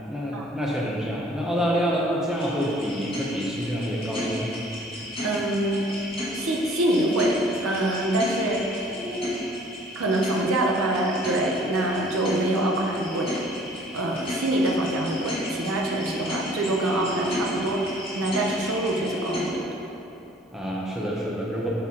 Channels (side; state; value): both; normal; correlation 0.55